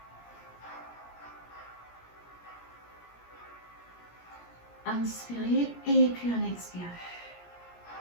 Inspirez et puis on expire.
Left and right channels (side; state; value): right; late; 17 ms